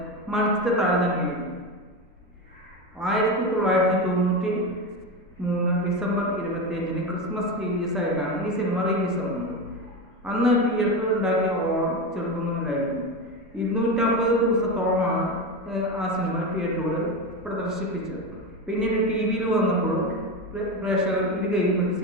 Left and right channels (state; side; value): normal; both; correlation 0.19